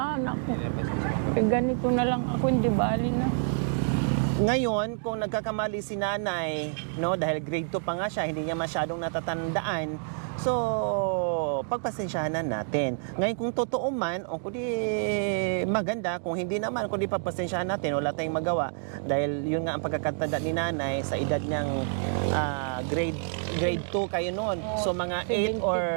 ako. Ganito na lang ako, hindi bali na. Ngayon, kung nagkakamali si nanay, no, dahil grade 2 pa nga siya, hindi niya masyadong natatandaan. So, pagpasensyahan natin. Ngayon, kung totoo man, o kundi maganda, kung hindi naman, kundi pagpasensyahan natin, wala tayong magawa. Dahil yun nga ang pagkakatanda ni nanay sa edad niyang grade 2 kayo noon. So, mga 8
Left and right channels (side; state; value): left; silent; digital silence